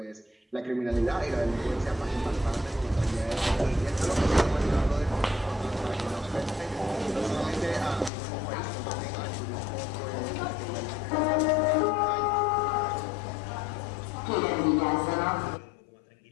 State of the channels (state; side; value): drops out; right; at 8.1 s